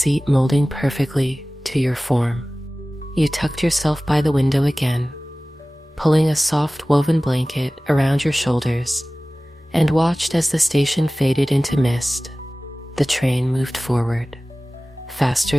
molding perfectly to your form. You tucked yourself by the window again, pulling a soft woven blanket around your shoulders, and watched as the station faded into mist. The train moved forward,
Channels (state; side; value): normal; both; correlation 0.97